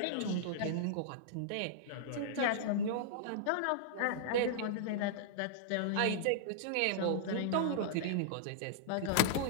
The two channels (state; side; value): different; both; correlation -0.01